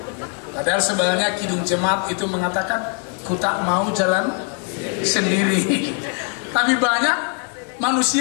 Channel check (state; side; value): quieter; right; 38.5 dB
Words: Padahal sebenarnya Kidung Jemaat itu mengatakan ku tak mau jalan sendiri. Tapi banyak